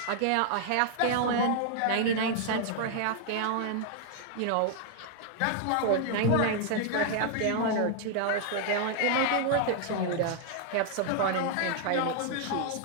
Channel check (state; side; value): different; both; correlation 0.00